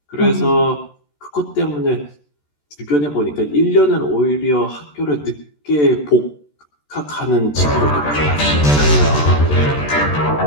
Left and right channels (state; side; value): late; right; 14 ms